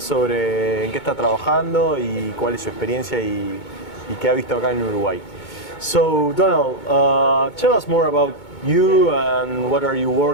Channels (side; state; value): right; late; 2.2 ms